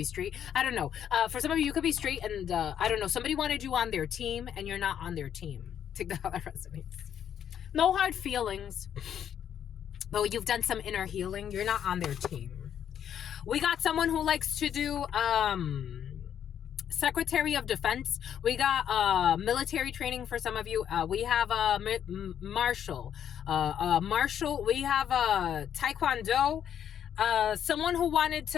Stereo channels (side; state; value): right; quieter; 9.3 dB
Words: straight. I don't know. For some of you, you could be straight and I don't know. Somebody wanted you on their team and you're not on their team. Take that how that resonates. No hard feelings. But you've done some inner healing. You're not on their team. We got someone who likes to do... Secretary of Defense. We got military training for some of you. We have martial. We have Taekwondo. Someone who wanted